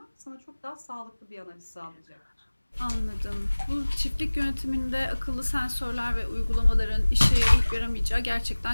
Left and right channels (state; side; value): inverted; both; correlation -1.00